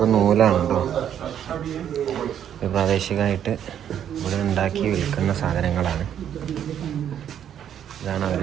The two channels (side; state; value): left; quieter; 9.6 dB